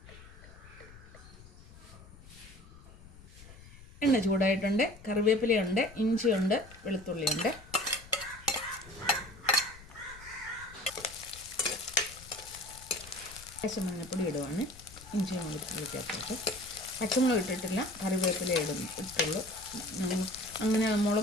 എണ്ണ ചൂടായിട്ടുണ്ട്. കറിവേപ്പിലയുണ്ട്, ഇഞ്ചിയുണ്ട്, വെളുത്തുള്ളിയുണ്ട്. മഞ്ഞപ്പൊടി ഇടുവാണ്. ഇഞ്ചിയും വെളുത്തുള്ളി ചേർത്തിട്ട് പച്ചമുളക് ഇട്ടിട്ടില്ല, കറിവേപ്പില ഇട്ടുള്ളൂ. അങ്ങനെ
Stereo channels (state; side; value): noise; left; rumble, 19 dB below the sound